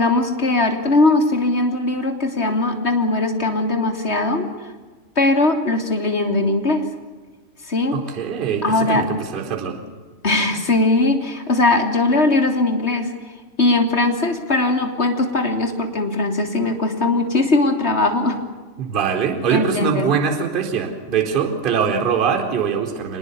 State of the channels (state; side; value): late; right; 3.2 ms